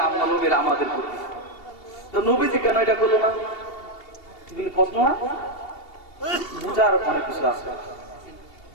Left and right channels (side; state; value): right; late; 2.8 ms